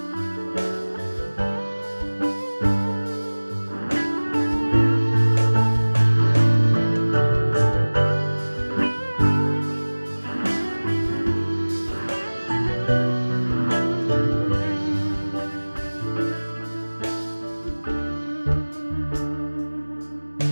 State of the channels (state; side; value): inverted; both; correlation -1.00